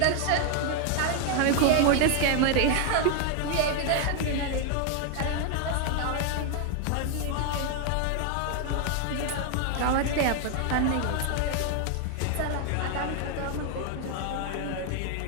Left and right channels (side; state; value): both; different; correlation 0.00